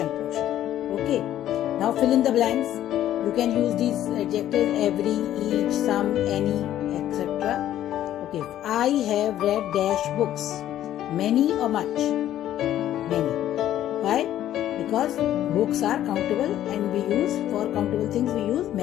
portion. Okay. Now fill in the blanks. You can use these adjectives: every, each, some, any, etc. Okay. I have read dash books. Many or much? Many. Why? Because books are countable and we use, for countable things we use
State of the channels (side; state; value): right; quieter; 12.2 dB